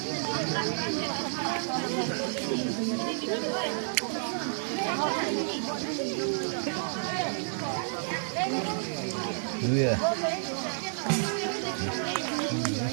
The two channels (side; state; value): left; silent; digital silence